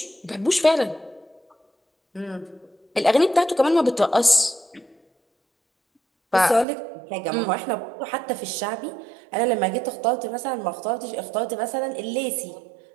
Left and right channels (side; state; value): left; drops out; at 6.7 s